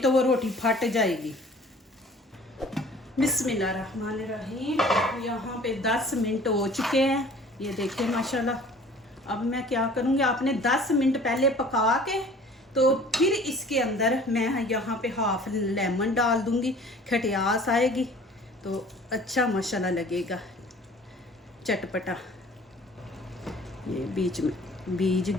तो वो रोटी फट जाएगी। बिस्मिल्लाहिर्रहमानिर्रहीम। यहाँ पे 10 मिनट हो चुके हैं, ये देखिए माशाल्लाह। अब मैं क्या करूँगी, आपने 10 मिनट पहले पका के तो फिर इसके अंदर मैं यहाँ पे हाफ लेमन डाल दूँगी, खटियास आएगी तो अच्छा माशाल्लाह लगेगा, चटपटा। ये बीच में बीज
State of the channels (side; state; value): both; normal; correlation 0.49